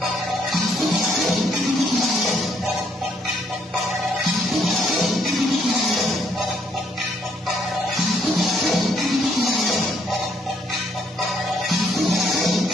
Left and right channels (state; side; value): normal; both; correlation 0.70